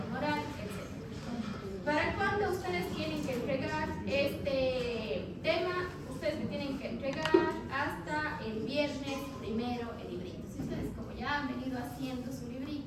inmoral, etc. ¿Para cuándo ustedes tienen que entregar este tema? Ustedes me tienen que entregar hasta el viernes primero el librito. Si ustedes como ya han venido haciendo su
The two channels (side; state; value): both; identical; correlation 1.00